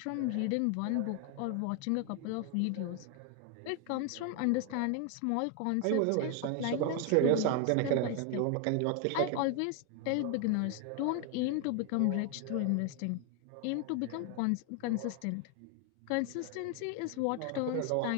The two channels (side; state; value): both; different; correlation 0.00